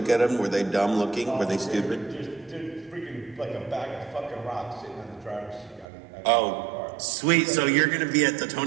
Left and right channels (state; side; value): drops out; left; at 5.9 s